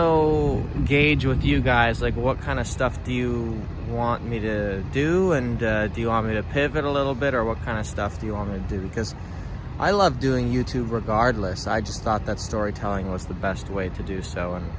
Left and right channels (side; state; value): both; identical; correlation 1.00